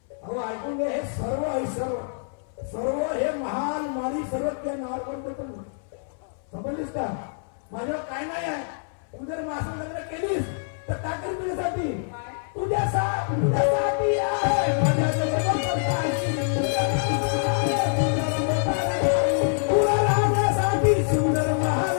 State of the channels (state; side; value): silent; right; 61 dB below the other